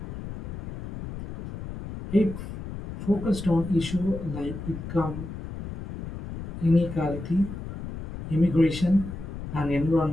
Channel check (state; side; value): noise; left; rumble, 9 dB below the sound